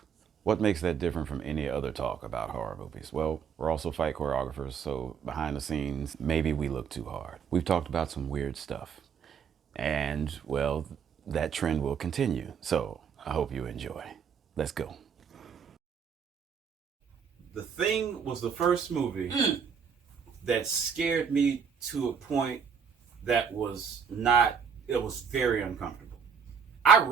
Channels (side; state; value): left; quieter; 6.9 dB